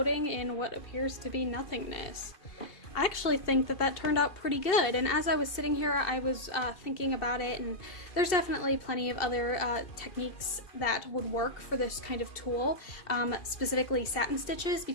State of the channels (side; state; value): right; late; 2.7 ms